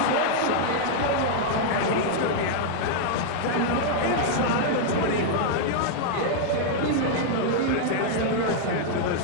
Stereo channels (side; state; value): both; different; correlation -0.01